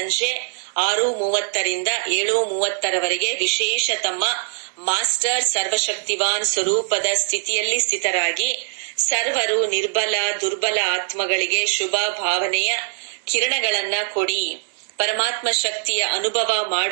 6:30ರಿಂದ 7:30ರವರೆಗೆ ವಿಶೇಷ ತಮ್ಮ ಮಾಸ್ಟರ್ ಸರ್ವಶಕ್ತಿವಾನ್ ಸ್ವರೂಪದ ಸ್ಥಿತಿಯಲ್ಲಿ ಸ್ಥಿತರಾಗಿ ಸರ್ವರು ನಿರ್ಬಲ ದುರ್ಬಲ ಆತ್ಮಗಳಿಗೆ ಶುಭ ಭಾವನೆಯ ಕಿರಣಗಳನ್ನ ಕೊಡಿ. ಪರಮಾತ್ಮ ಶಕ್ತಿಯ ಅನುಭವ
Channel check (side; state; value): left; silent; digital silence